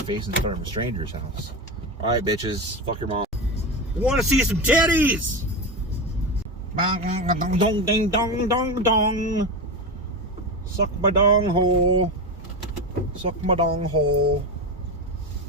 in front of a stranger's house. Alright, bitches, fuck your mom. Wanna see some titties? Dong ding dong dong dong. Suck my dong hole. Suck my dong hole.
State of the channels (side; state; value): both; normal; correlation 0.18